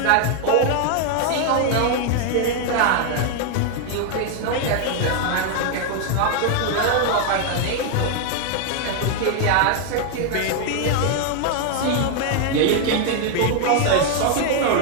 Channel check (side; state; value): both; different; correlation 0.00